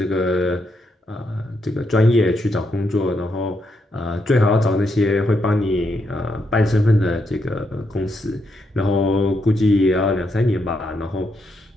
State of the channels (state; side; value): normal; both; correlation 0.80